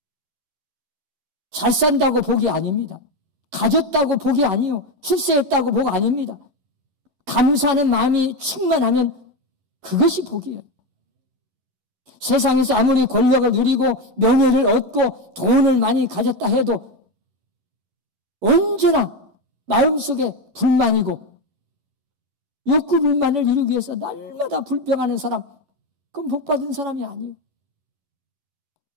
잘 산다고 복이 아닙니다. 가졌다고 복이 아니요. 출세했다고 복 아닙니다. 감사하는 마음이 충만하면 그것이 복이에요. 세상에서 아무리 권력을 누리고 명예를 얻고 돈을 많이 가졌다 해도 언제나 마음속에 불만이고 욕구 불만을 이루기 위해서 날마다 불평하는 사람, 그건 복받은 사람이 아니에요.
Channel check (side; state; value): left; late; 11 ms